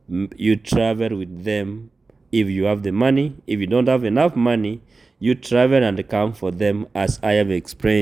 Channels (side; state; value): left; quieter; 3.8 dB